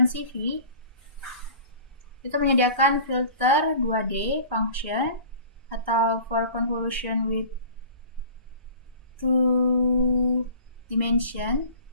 itu menyediakan filter 2D function atau for convolution with two dimension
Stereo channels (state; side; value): inverted; both; correlation -0.43